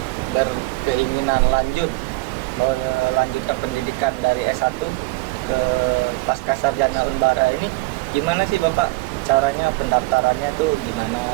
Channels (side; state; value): left; quieter; 22.6 dB